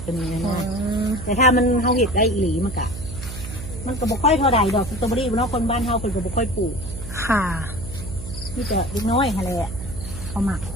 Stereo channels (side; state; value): right; noise; hum, 10 dB below the sound